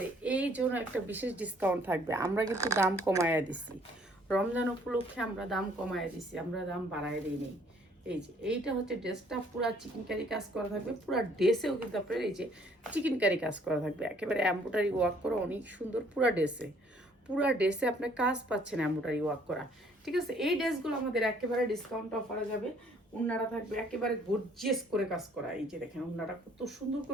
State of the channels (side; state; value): both; normal; correlation 0.61